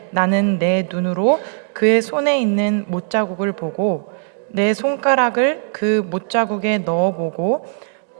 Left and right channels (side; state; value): left; silent; digital silence